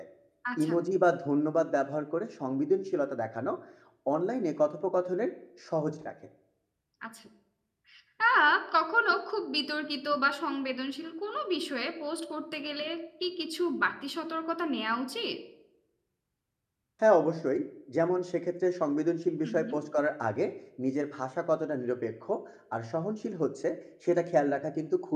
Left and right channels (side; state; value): both; identical; correlation 1.00